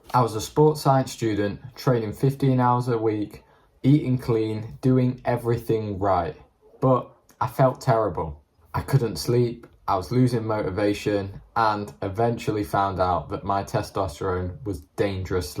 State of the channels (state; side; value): identical; both; correlation 1.00